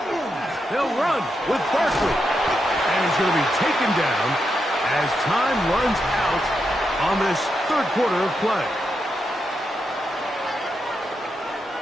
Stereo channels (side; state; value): both; normal; correlation 0.84